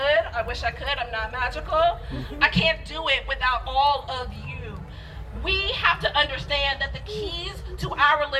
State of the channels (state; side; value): identical; both; correlation 1.00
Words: I'm not magical. I can't do it without all of you. We have to understand that the keys to our